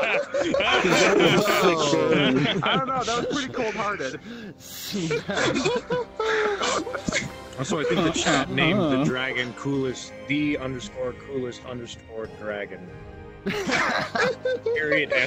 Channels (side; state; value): both; identical; correlation 1.00